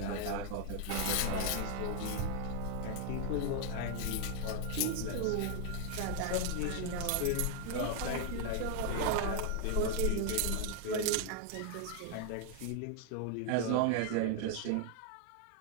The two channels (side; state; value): both; different; correlation 0.00